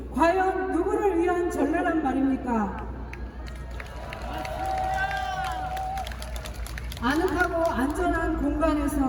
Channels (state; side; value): identical; both; correlation 1.00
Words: 과연 누구를 위한 전례란 말입니까? 아늑하고 안전한